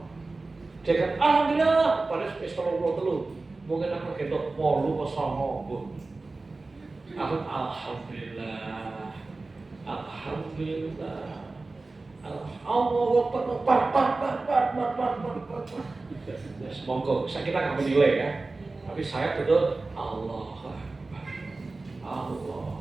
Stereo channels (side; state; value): left; quieter; 3.5 dB